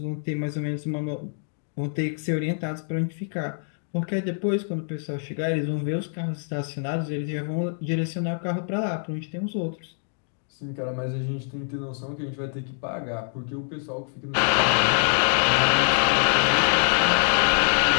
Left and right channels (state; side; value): silent; right; digital silence